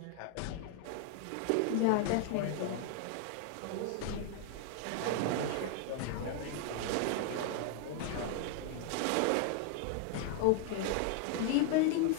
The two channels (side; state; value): both; different; correlation 0.00